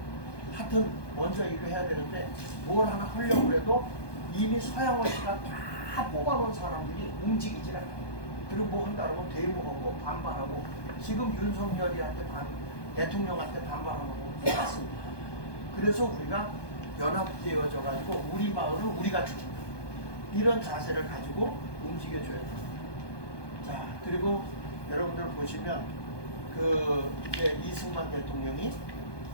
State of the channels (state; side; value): late; right; 1.2 ms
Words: 하여튼 먼저 이거 해야 되는데 뭘 하나 하려고 해도 이미 서양호 씨가 다 뽑아놓은 사람들이 움직이질 않아요. 그리고 뭐 한다 그러면 대모하고 반발하고, 지금 윤석열이한테 대통령한테 반발하고 똑같습니다. 그래서 우리가 연합되어져 가지고 우리 마을을 우리가 지킨다. 이런 자세를 가지고 움직여줘야 됩니다. 자, 그리고 여러분들 보시면 이제 이승만 대통령이